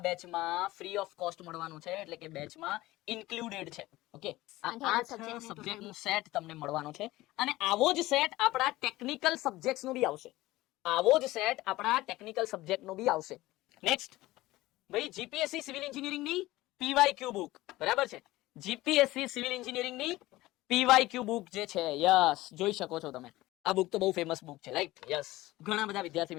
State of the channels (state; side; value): quieter; right; 18.0 dB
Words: ફ્રી ઓફ કોસ્ટ મળવાનું છે, એટલે કે બેચમાં ઇન્ક્લુડેડ છે. ઓકે, આ 8 સબ્જેક્ટનું સેટ તમને મળવાનો છે અને આવો જ સેટ આપણા ટેકનિકલ સબ્જેક્ટ્સનો બી આવશે. નેક્સ્ટ ભાઈ, જીપીએસસી સિવિલ એન્જિનિયરિંગની પીવાયક્યુ બુક, બરાબર છે. જીપીએસસી સિવિલ એન્જિનિયરિંગની પીવાયક્યુ બુક જે છે, યસ, જોઈ શકો છો તમે. આ બુક તો બહુ ફેમસ બુક છે, રાઈટ. યસ, ઘણા બધા વિદ્યાર્થી